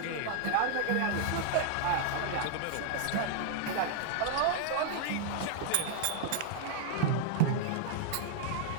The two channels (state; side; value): different; both; correlation 0.00